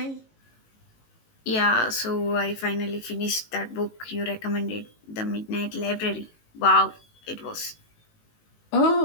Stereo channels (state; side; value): late; right; 18 ms